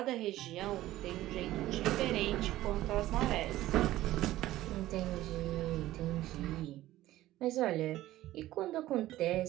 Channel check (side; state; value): left; quieter; 15.4 dB